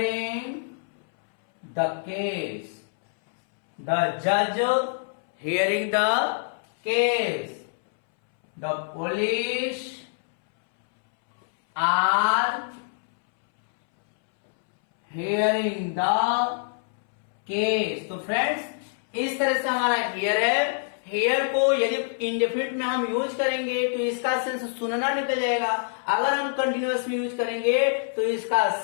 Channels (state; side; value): silent; right; 61 dB below the other